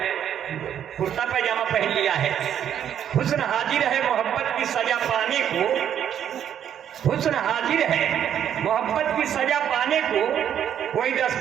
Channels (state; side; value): quieter; left; 9.6 dB